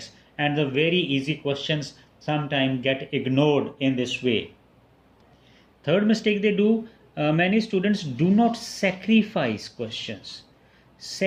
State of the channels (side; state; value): both; identical; correlation 1.00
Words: And the very easy questions sometimes get ignored in this way. Third mistake they do, many students do not sacrifice questions.